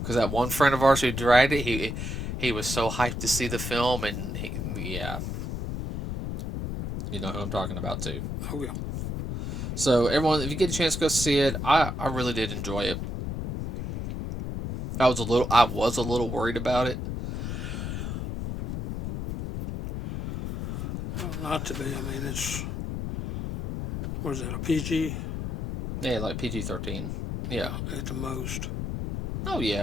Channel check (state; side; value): noise; left; rumble, 4 dB below the sound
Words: Because that one friend of ours who dragged it, he was so hyped to see the film, and yeah. You know who I'm talking about, too. Oh, yeah. So, everyone, if you get a chance to go see it, I really did enjoy it. I was a little worried about it. Not to be. I mean, it's what is it? A PG? Yeah, like PG-13. Yeah. At the most. Oh